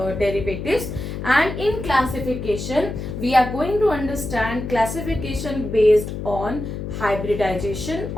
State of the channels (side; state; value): left; noise; hum, 6 dB below the sound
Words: and in classification we are going to understand classification based on hybridization